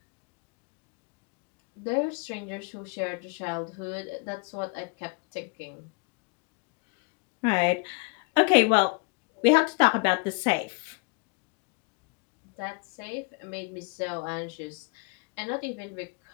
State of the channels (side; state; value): right; quieter; 30.6 dB